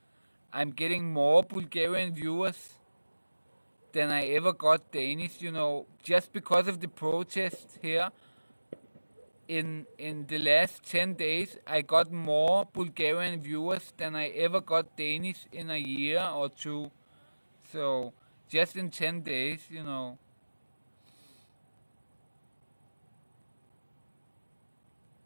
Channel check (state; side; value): inverted; both; correlation -1.00